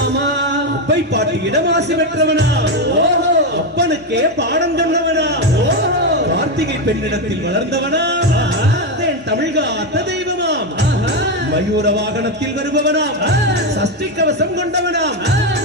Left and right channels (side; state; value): both; normal; correlation 0.09